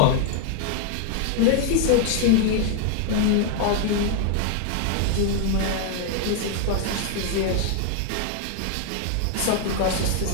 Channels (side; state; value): both; different; correlation 0.00